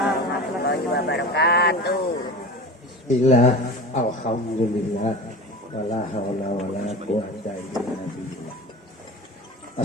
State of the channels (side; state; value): both; normal; correlation 0.33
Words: warahmatullahi wabarakatuh. Bismillah, alhamdulillah, wala haula wala quwata illa billah.